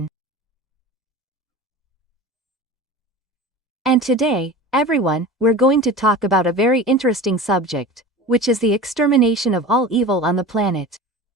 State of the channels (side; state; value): both; normal; correlation 0.35